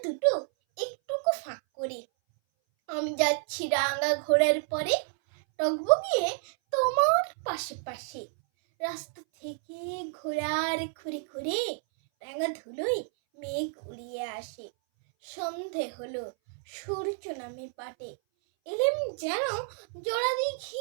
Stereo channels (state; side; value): silent; left; 58 dB below the other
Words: দুটো একটুকু ফাঁক করে। আমি যাচ্ছি রাঙা ঘোড়ার পরে, টগবগিয়ে তোমার পাশে পাশে। রাস্তা থেকে ঘোড়ার খুঁড়ে খুঁড়ে রাঙা ধুলোয় মেঘ উড়িয়ে আসে। সন্ধে হলো, সূর্য নামে পাটে, এলেম যেন জোড়া